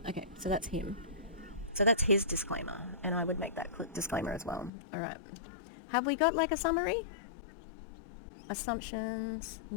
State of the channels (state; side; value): drops out; right; at 4.7 s